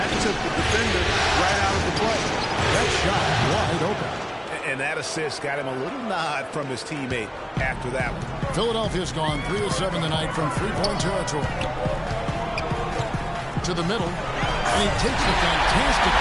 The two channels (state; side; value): identical; both; correlation 1.00